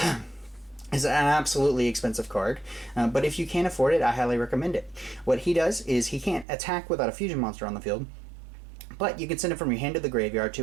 It's an absolutely expensive card, but if you can't afford it, I highly recommend it. What he does is he can't attack without a fusion monster on the field, but you can send it from your hand to the graveyard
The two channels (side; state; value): left; drops out; at 6.5 s